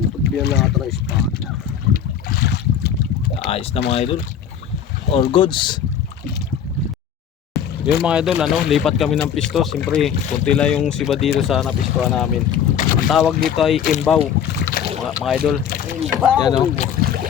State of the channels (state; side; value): quieter; right; 8.5 dB